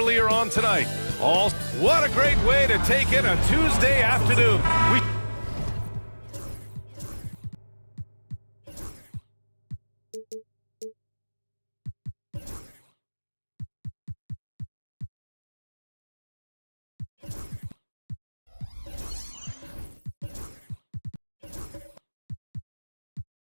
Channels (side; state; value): both; inverted; correlation -1.00